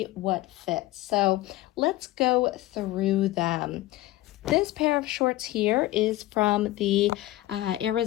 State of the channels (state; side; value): quieter; right; 16.9 dB